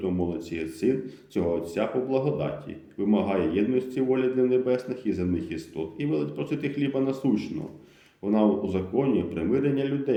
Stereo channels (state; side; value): identical; both; correlation 1.00